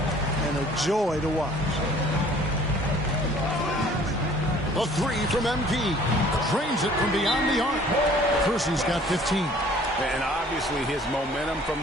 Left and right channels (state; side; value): normal; both; correlation 0.53